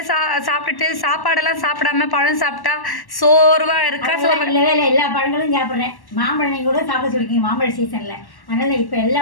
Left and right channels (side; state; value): right; late; 1.1 ms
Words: சாப்பிட்டுட்டு சாப்பாடெல்லாம் சாப்பிடாம பழம் சாப்பிட்டா சோர்வாக இருக்கா? இல்லவே இல்லை, எல்லா பழங்களும் சாப்பிட்றேன். மாம்பழம் நீங்கள் கூட சாப்பிட சொல்லிருக்கீங்க மாம்பழ சீசனில். அதனால் இப்போ எல்லா